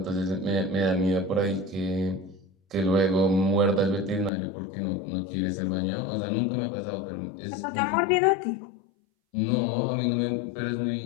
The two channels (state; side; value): drops out; right; at 4.3 s